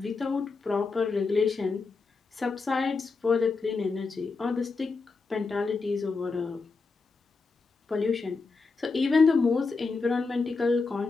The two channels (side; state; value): right; quieter; 4.2 dB